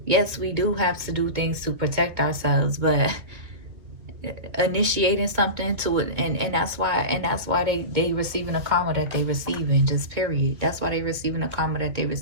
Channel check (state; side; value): late; left; 2.6 ms